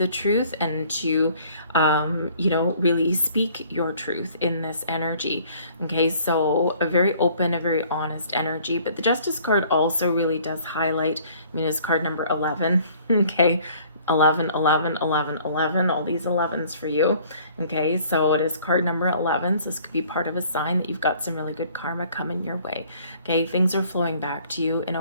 truth, and to, really speak your truth in this energy. Okay, so a very open, a very honest energy. But the Justice card also really does highlight, I mean, it's card number 11. Okay, 11, 11, 11, 11, all these 11s for you. Okay, so it is card number 11. So this could be part of a sign that you've got some really good karma coming your way. Okay, things are flowing back to you in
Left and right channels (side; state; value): both; inverted; correlation -0.56